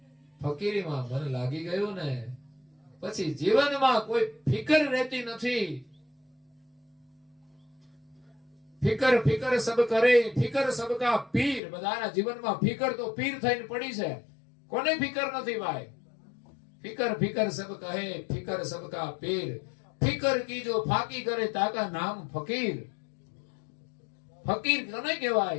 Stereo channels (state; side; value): drops out; right; at 11.6 s